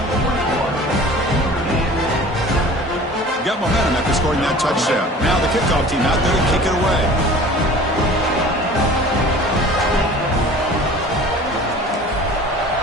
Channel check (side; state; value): both; normal; correlation 0.44